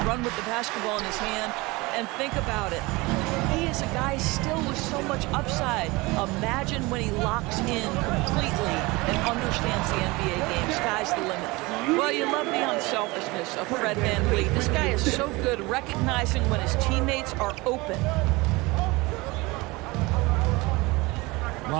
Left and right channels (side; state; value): left; quieter; 23.2 dB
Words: run with the basketball in his hand. And think about it. He is a guy still with so much upside. Imagine when he locks in completely and understands the NBA game. Sky's the limit. Well, you love the unselfishness of Fred Van Vliet. This guy is so good recognizing when his teammates are open.